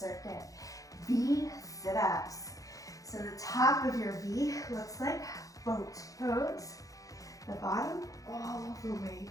V sit-ups. So the top of your V looks like boat pose. The bottom all the way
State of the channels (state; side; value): late; right; 0.17 ms